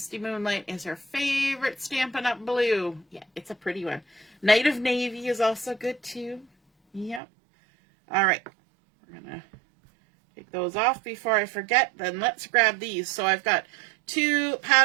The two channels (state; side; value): drops out; left; at 7.2 s